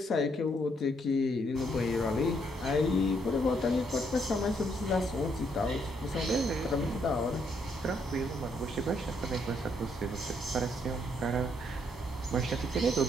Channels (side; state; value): both; normal; correlation 0.73